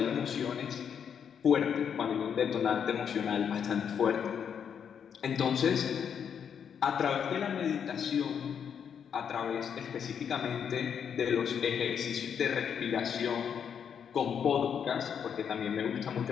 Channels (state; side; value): quieter; right; 7.7 dB